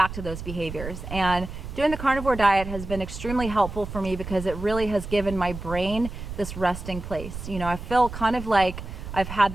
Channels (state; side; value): noise; right; rumble, 9 dB below the sound